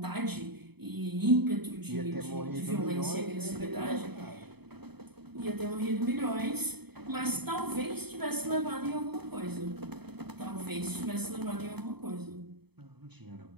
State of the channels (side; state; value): left; late; 0.98 ms